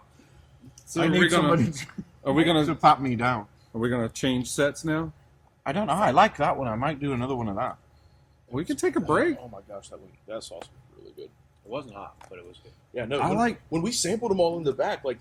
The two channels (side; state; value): both; identical; correlation 1.00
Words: So I are we need somebody gonna to pat me down. change sets now? I don't know. I like that one. I might do another one of that. We can take a break. Oh my gosh, that sauce was really good. It wasn't hot, but it was good. Yeah, no. I like. when we sampled them all in the back. Like